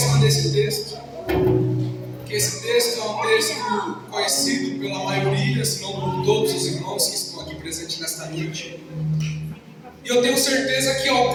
desse texto, porque esse texto é um texto conhecido pela maioria, se não por todos os irmãos que estão aqui presentes nesta noite. E eu tenho certeza que em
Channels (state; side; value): identical; both; correlation 1.00